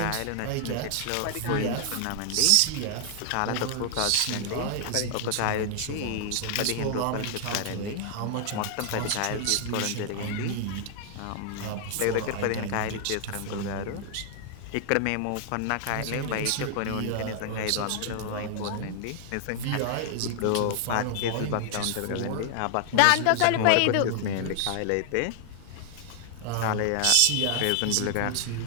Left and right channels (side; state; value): both; different; correlation 0.00